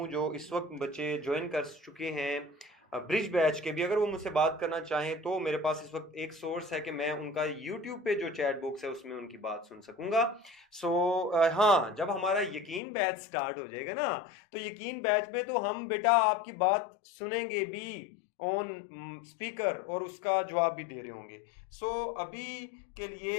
जो इस वक्त बच्चे ज्वाइन कर चुके हैं ब्रिज बैच के भी, अगर वो मुझसे बात करना चाहें तो मेरे पास इस वक्त एक सोर्स है कि मैं उनका यूट्यूब पे जो चैट बॉक्स है उसमें उनकी बात सुन सकूंगा। हाँ, जब हमारा यकीन बैच स्टार्ट हो जाएगा ना, तो यकीन बैच में तो हम बेटा आपकी बात सुनेंगे भी ऑन स्पीकर और उसका जवाब भी दे रहे होंगे। अभी के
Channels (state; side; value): drops out; right; at 12.8 s